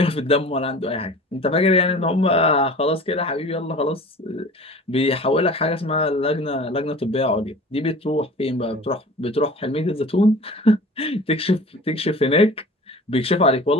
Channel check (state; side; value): normal; both; correlation 0.42